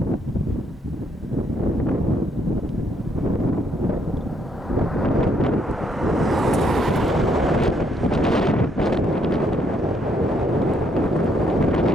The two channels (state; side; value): normal; both; correlation 0.72